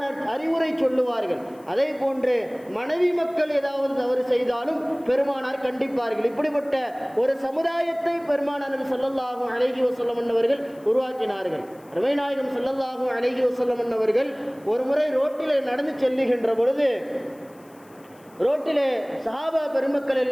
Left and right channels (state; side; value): noise; left; hiss, 29 dB below the sound